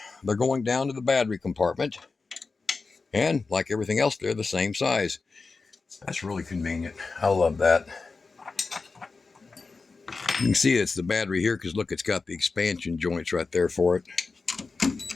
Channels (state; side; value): quieter; right; 4.2 dB